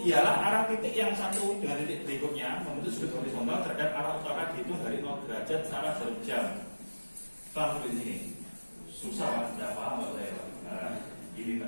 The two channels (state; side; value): inverted; both; correlation -1.00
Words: ialah arah titik yang satu dengan titik berikutnya membentuk sudut horizontal terhadap arah utara dihitung dari 0 derajat secara jarum jam. Paham sampai sini? Susah lah, tidak paham nggak saya. Nah, ini